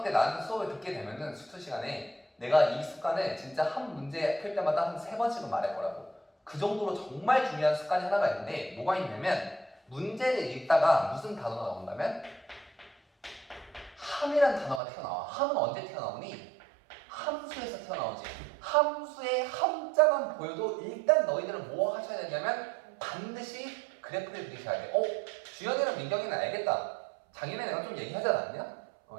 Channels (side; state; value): left; drops out; at 14.8 s